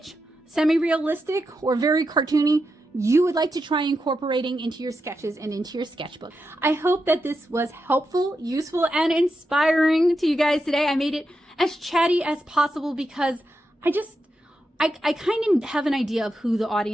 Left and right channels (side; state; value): both; normal; correlation 0.87